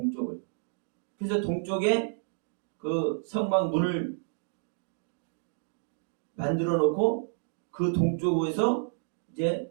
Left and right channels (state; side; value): silent; left; digital silence